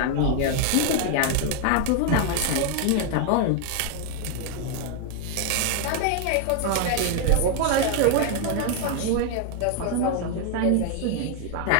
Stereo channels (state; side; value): different; both; correlation 0.00